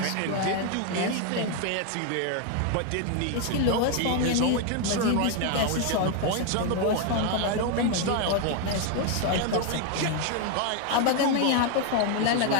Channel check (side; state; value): both; different; correlation 0.01